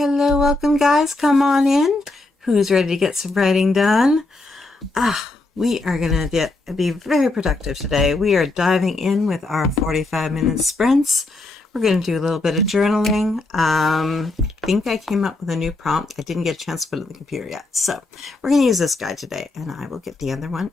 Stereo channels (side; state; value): right; quieter; 3.1 dB